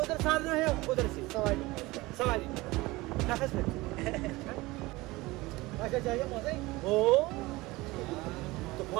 उधर साधना है, उधर से सवारी नफस में अच्छा चाहिए मौसम ओ तो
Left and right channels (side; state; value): left; quieter; 20.8 dB